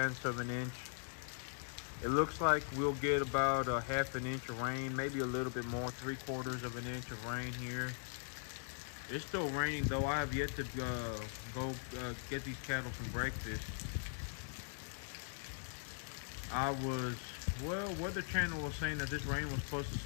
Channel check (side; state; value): right; silent; digital silence